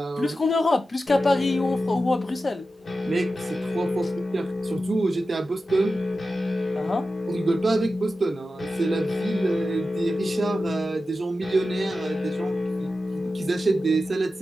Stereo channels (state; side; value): normal; both; correlation 0.92